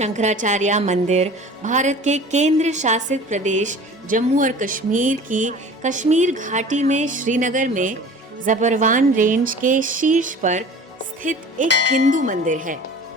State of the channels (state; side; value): normal; both; correlation 0.42